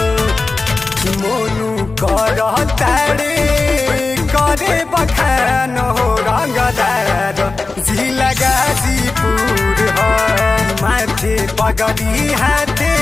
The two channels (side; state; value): right; quieter; 3.7 dB